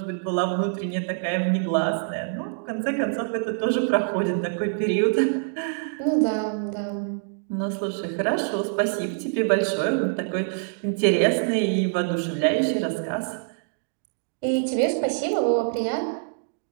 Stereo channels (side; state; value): left; silent; digital silence